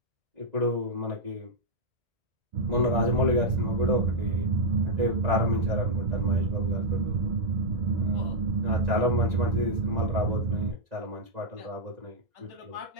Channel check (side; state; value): left; late; 1.9 ms